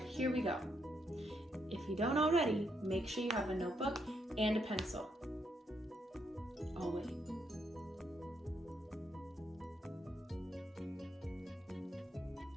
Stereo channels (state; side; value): normal; both; correlation 0.77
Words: here we go. If you don't already, make sure you have a notebook and a pencil. I'll wait.